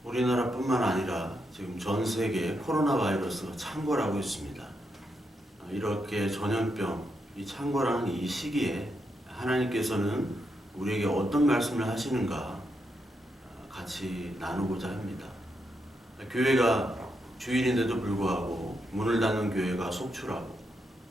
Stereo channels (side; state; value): both; normal; correlation 0.82